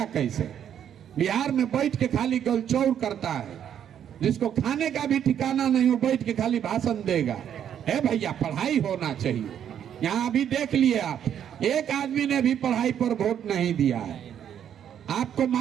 कैसे? बिहार में बैठ के खाली गलचौर करता है, जिसको खाने का भी ठिकाना नहीं, वो बैठ के खाली भाषण देगा। ए भैया पढ़ाई होना चाहिए। यहाँ अभी देख लिए आप, एक आदमी ने भी पढ़ाई पर वोट नहीं दिया है। आपको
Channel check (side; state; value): left; quieter; 9.4 dB